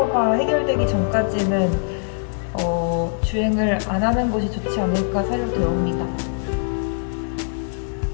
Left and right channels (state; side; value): silent; right; digital silence